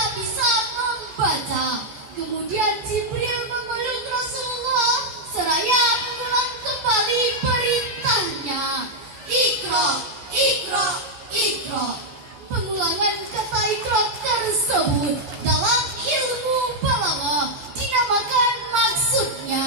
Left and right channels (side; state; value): left; late; 14 ms